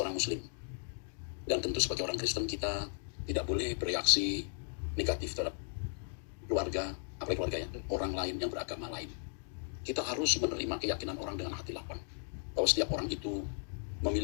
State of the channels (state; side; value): silent; right; digital silence